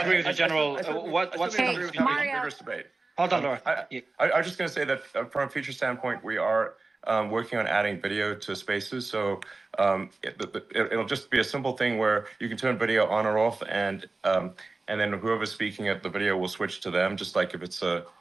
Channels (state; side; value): quieter; left; 3.5 dB